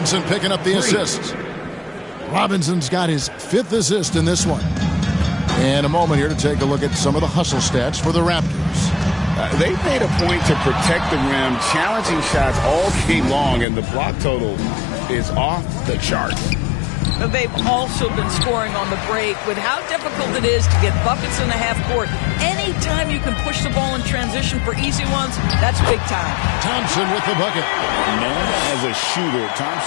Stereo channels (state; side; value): drops out; right; at 13.7 s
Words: picking up the assist. Robinson's got his fifth assist in this one. And a moment here to take a look at some of the hustle stats for the Raptors. They made a point to protect the rim, challenging shots all game long, and the block total is off the chart. They've also been scoring on the break with how difficult it is to get buckets in the half court. Anytime you can push the ball in transition for easy ones, that's big time. Thompson with the bucket. Known as a shooter,